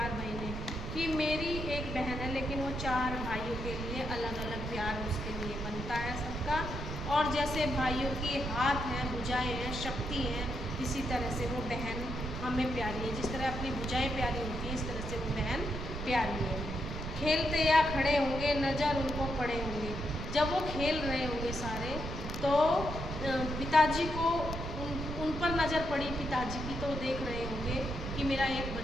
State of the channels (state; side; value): noise; right; rumble, 6 dB below the sound